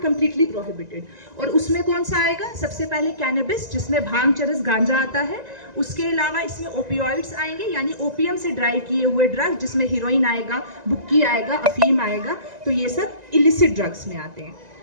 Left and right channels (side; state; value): left; late; 1.9 ms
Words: prohibited. और उसमें कौन सा आएगा? सबसे पहले कैनबिस, जिसमें भांग, चरस, गांजा आता है। उसके अलावा इसमें ओपियोइड्स आएंगे यानी ओपियम से ड्राइव किए हुए ड्रग, जिसमें हीरोइन आएगा, बुक्की आएगा, अफीम आएगा। तो ये सब इलिसिट ड्रग्स में आते हैं।